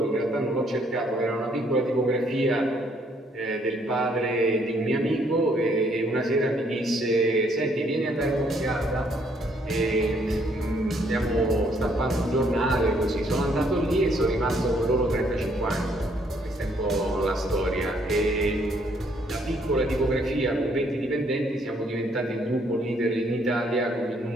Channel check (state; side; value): normal; both; correlation 0.68